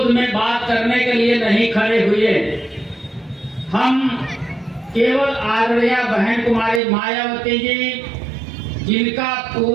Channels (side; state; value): left; drops out; at 6.8 s